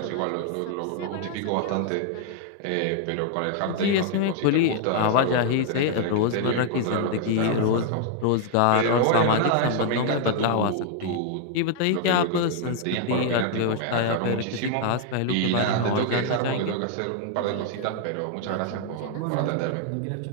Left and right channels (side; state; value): both; different; correlation 0.00